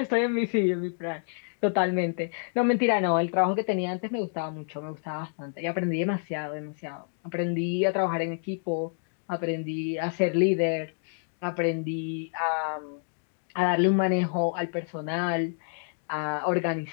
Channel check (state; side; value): silent; right; digital silence